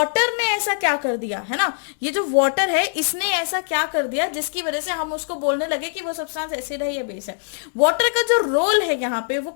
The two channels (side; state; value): right; silent; digital silence